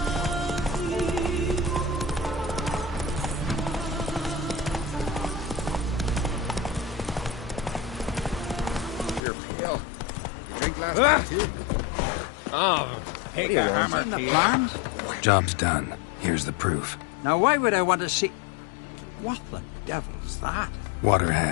You're pale. You drink last night too? Oh, Seen the plans? Job's done. Here's the proof. Now why would I want to see... What the devil's that? Water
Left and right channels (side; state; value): right; drops out; at 9.2 s